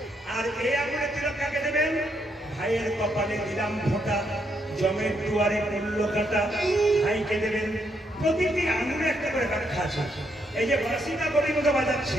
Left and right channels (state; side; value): normal; both; correlation 0.76